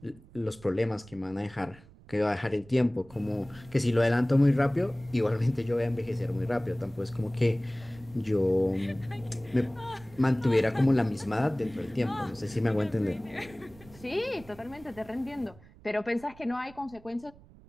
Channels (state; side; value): noise; right; rumble, 23 dB below the sound